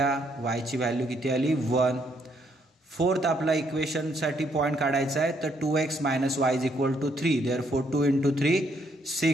वायची व्हॅल्यू किती आली 1. फोर्थ आपला इक्वेशनसाठी पॉईंट काढायचा आहे, तर 2x - y = 3. therefore 2 × 3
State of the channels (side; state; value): both; normal; correlation 0.71